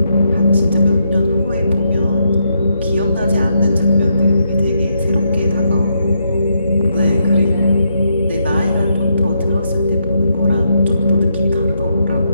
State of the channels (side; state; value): both; inverted; correlation -0.79